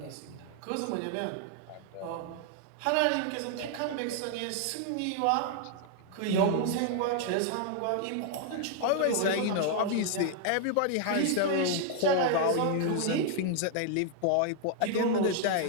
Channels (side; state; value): both; different; correlation 0.00